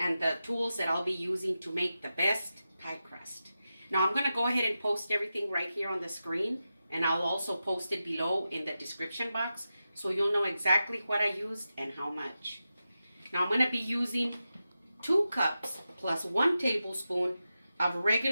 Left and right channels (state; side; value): inverted; both; correlation -0.91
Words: the tools that I'll be using to make the best pie crust. Now I'm going to go ahead and post everything right here on the screen, and I'll also post it below in the description box, so you'll know exactly what I used and how much. Now I'm going to be using 2 cups plus 1 tablespoon of